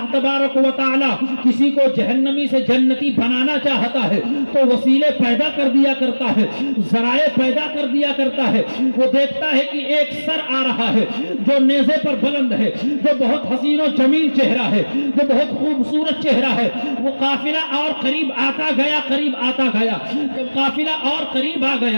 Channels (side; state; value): both; inverted; correlation -1.00